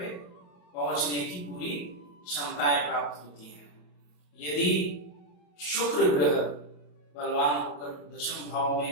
पहुंचने की पूरी क्षमताएं प्राप्त होती हैं। यदि शुक्र ग्रह बलवान होकर दशम भाव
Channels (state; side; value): late; right; 28 ms